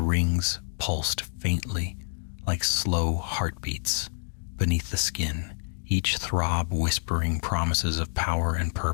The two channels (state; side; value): silent; right; digital silence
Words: rings pulsed faintly, like slow heartbeats beneath the skin, each throb whispering promises of power and